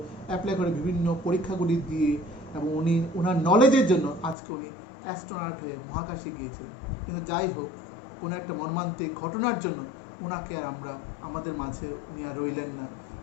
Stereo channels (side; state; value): right; drops out; at 4.4 s